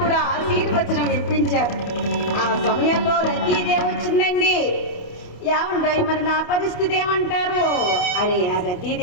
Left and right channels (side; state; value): right; late; 28 ms